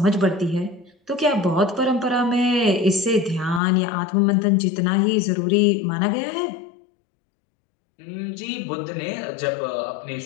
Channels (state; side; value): drops out; right; at 3.6 s